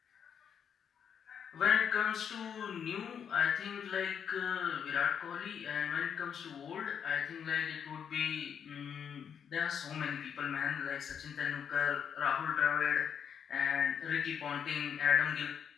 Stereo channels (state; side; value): quieter; right; 7.8 dB